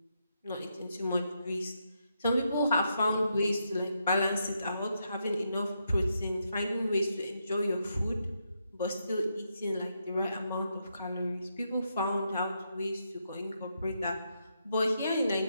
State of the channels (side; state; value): both; inverted; correlation -0.81